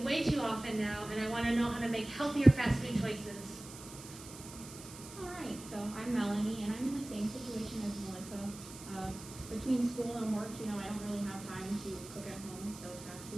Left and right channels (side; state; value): right; noise; hiss, 15 dB below the sound